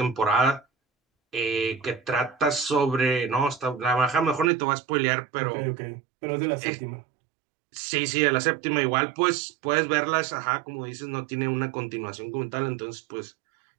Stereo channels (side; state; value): left; drops out; at 4.5 s